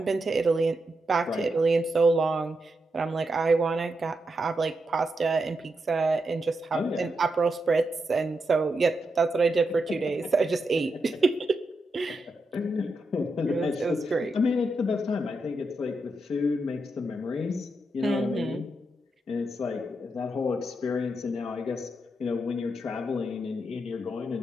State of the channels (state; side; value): normal; both; correlation 0.85